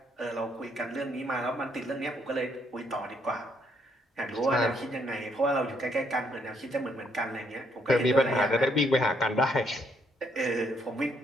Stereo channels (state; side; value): normal; both; correlation 0.71